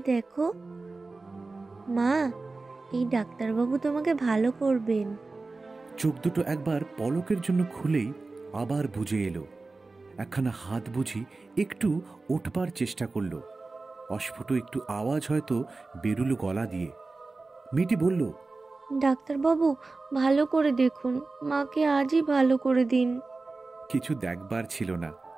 দেখো। মা, এই ডাক্তারবাবু তোমাকে ভালো করবেন। চোখ দুটো একবার পলকের জন্য খুলেই আবার বুজে এলো। একখানা হাত বুঝি একটু ওঠবার চেষ্টা করলো। অস্ফুট একটু আওয়াজ হয়তো বেরুলো গলা দিয়ে। মেয়েটি বলল, ডাক্তারবাবু, ভালো করে দেখুন, মাকে আজই ভালো করে দিন। কিছু দেখবার ছিল না,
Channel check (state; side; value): quieter; left; 3.6 dB